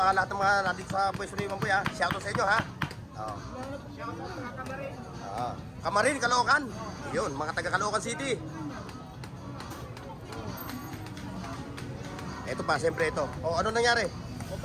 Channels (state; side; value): identical; both; correlation 1.00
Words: lahat ng mga nandito sa pwesto ni Mamboy ha, shoutout sa inyo ha. Oo. Kamarin, Caloocan. Yun, mga taga Caloocan City. Ito pa, siyempre ito. O, ano nangyari?